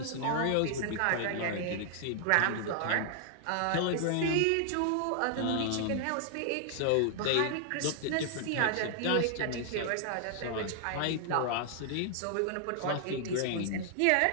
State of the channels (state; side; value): different; both; correlation 0.00